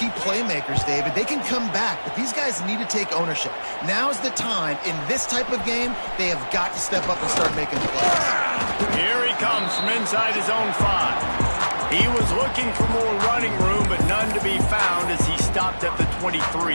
playmakers, David. They can come back, but these guys need to take ownership. Now's the time. In this type of game, they have got to step up and start making plays. Here he comes from inside his own 5. He was looking for more running room, but none to be found as he stopped at the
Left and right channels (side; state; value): both; inverted; correlation -1.00